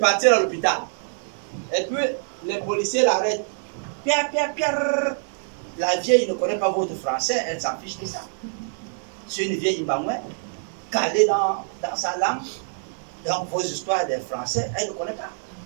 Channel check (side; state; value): left; silent; 62 dB below the other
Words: à l'hôpital. Et puis, les policiers l'arrêtent. Pierre. La vieille ne connaît pas votre français, elle s'en fiche de ça. C'est une vieille Mbangoué, calée dans sa langue. Donc, vos histoires des français, elle ne connaît pas.